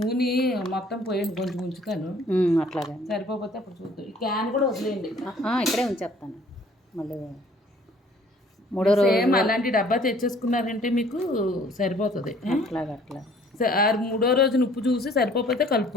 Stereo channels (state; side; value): normal; both; correlation 0.56